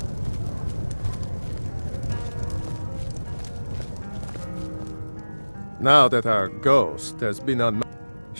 Now that our ghost has been on...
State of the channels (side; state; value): both; inverted; correlation -1.00